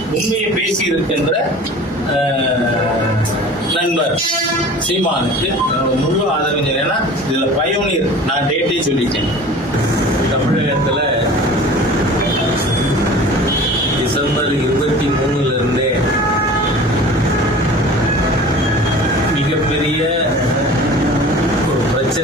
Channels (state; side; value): normal; both; correlation 0.41